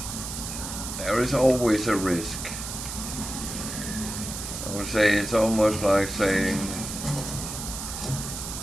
is always a risk. I would say it's almost like saying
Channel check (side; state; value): right; noise; hiss, 7 dB below the sound